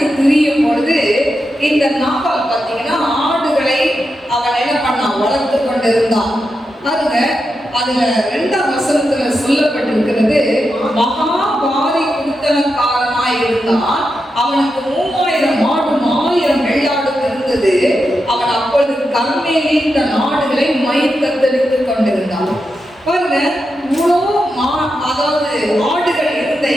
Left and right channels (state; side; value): normal; both; correlation 0.87